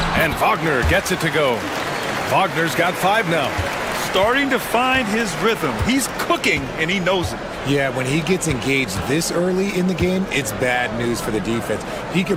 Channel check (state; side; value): identical; both; correlation 1.00